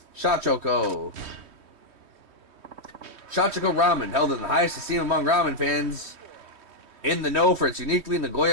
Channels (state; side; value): late; left; 3.2 ms